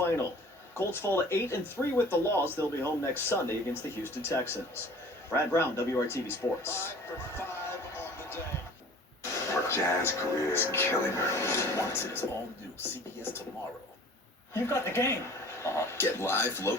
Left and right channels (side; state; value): both; normal; correlation 0.46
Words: Colts fall to 8-3 with the loss. They'll be home next Sunday against the Houston Texans. Brad Brown, WRTV Sports. Her jazz career is killing her. Watch its all new CBS tomorrow. You got the game. Get live,